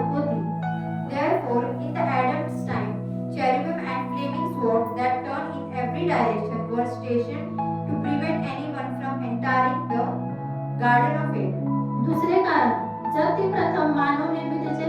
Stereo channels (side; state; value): both; identical; correlation 1.00